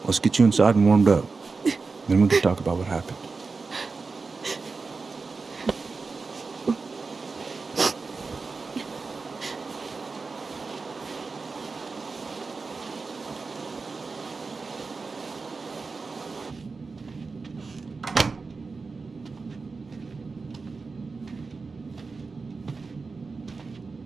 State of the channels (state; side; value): quieter; left; 4.3 dB